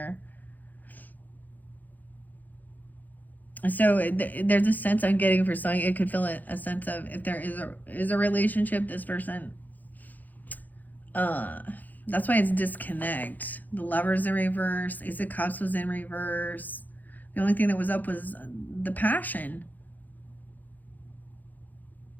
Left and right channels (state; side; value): late; right; 0.083 ms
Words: So there's a sense I'm getting for something. It could feel a sense of, if there is a relationship, this person, that's why it's disconnect. The Lover's in reverse. Ace of Cups was in reverse. The only thing that was up was the passion.